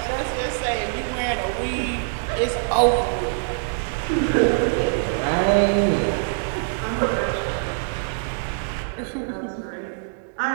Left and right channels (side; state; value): left; silent; 63 dB below the other